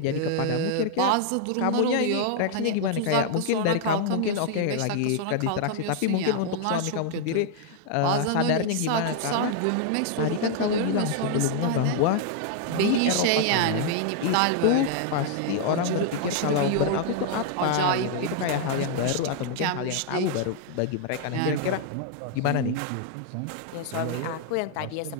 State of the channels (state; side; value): different; both; correlation 0.00